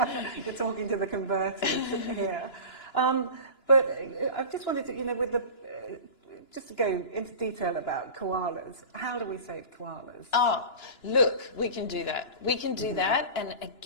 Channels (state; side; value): late; right; 2.9 ms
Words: you're talking to the converters here. But I just wanted to, you know, just to go into detail about koalas. How do we save koalas? Oh, look, we can do that. We can do that, and